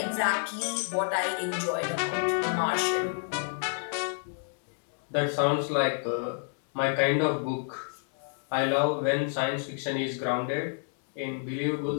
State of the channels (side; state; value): right; silent; digital silence